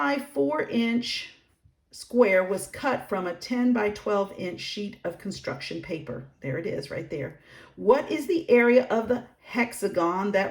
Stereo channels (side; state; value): both; identical; correlation 1.00